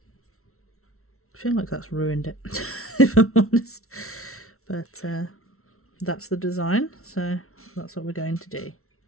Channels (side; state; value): right; late; 0.63 ms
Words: I feel like that's ruined it, if I'm honest. But that's the design, so that's what we're going to do.